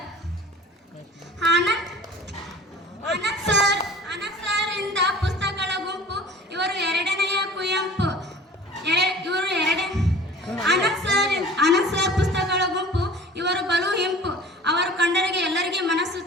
ಆನಂದ್ ಸರ್ ಇಂದ ಪುಸ್ತಕಗಳ ಗುಂಪು, ಇವರು 2ನೆಯ ಕುವೆಂಪು, ಆನಂದ್ ಸರ್ ಪುಸ್ತಕಗಳ ಗುಂಪು, ಇವರು ಬಲು ಹಿಂಪು, ಅವರು ಕಂಡರಿಗೆ ಎಲ್ಲರಿಗೆ ಮನಸ್ಸು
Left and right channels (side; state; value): both; normal; correlation 0.44